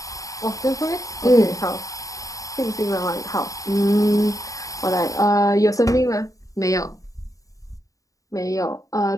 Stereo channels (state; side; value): late; right; 0.16 ms